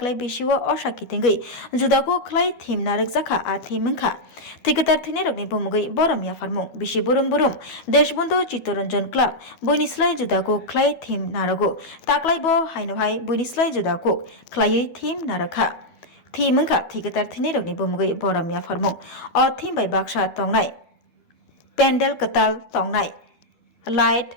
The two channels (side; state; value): right; late; 12 ms